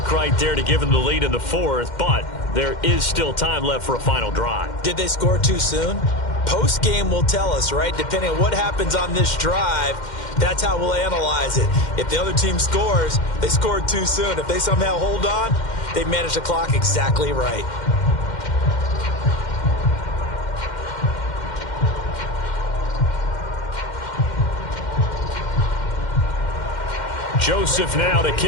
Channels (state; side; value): late; right; 2.1 ms